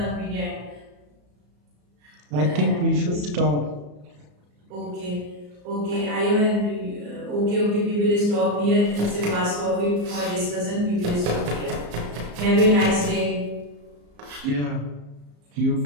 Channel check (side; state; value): left; late; 34 ms